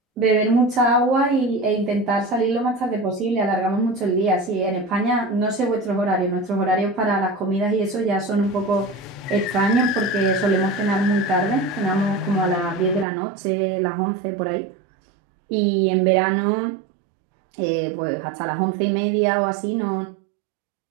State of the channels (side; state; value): left; drops out; at 13.1 s